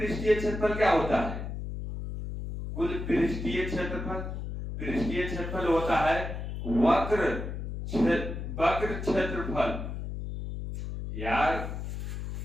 क्षेत्रफल क्या होता है, कुल पृष्ठीय क्षेत्रफल होता है वक्र क्षेत्रफल। यार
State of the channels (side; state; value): left; noise; hum, 6 dB below the sound